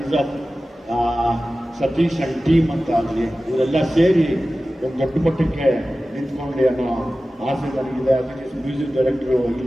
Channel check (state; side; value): normal; both; correlation 0.96